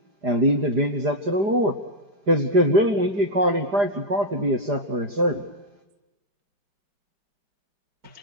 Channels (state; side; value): late; left; 5.0 ms